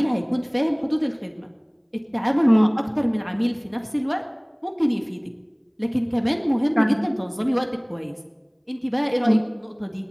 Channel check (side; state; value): both; identical; correlation 1.00